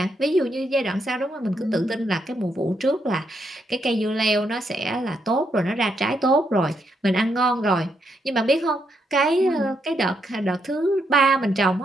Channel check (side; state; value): both; normal; correlation 0.78